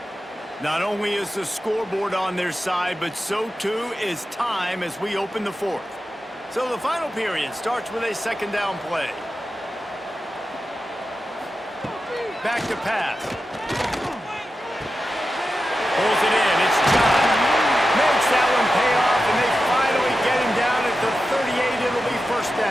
Not only is the scoreboard on their side, but so too is time as we open the fourth. So the final period starts with a 2nd down play. Back to pass. Pulls it in. It's John. Makes that one pay off, and they finally get him down at the 38. It'll be first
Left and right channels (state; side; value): normal; both; correlation 0.91